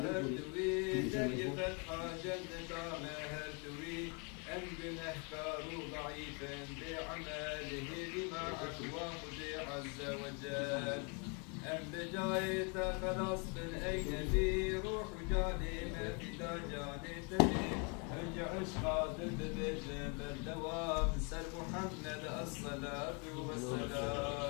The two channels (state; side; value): quieter; right; 34.9 dB